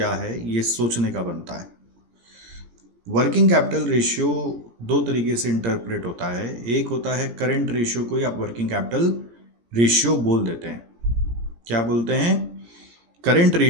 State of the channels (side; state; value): left; late; 17 ms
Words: है ये सोचने का बनता है। वर्किंग कैपिटल रेशियो 2 तरीके से इंटरप्रेट होता है। एक होता है करेंट रेशियो को ही आप वर्किंग कैपिटल रेशियो बोल देते हैं। क्या बोलते हैं? करेंट